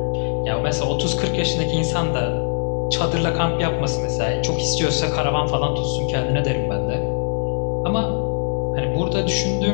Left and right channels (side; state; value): right; silent; digital silence